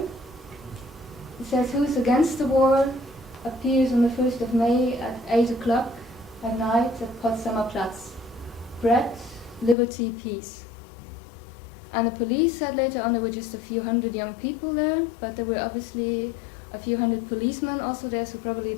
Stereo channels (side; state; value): right; drops out; at 9.8 s